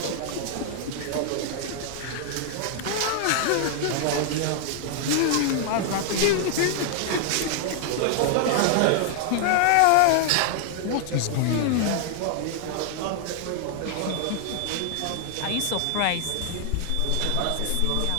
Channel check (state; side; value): different; both; correlation 0.00